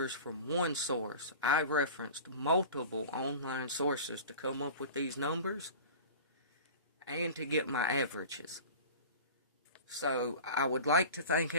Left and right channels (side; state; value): both; inverted; correlation -0.37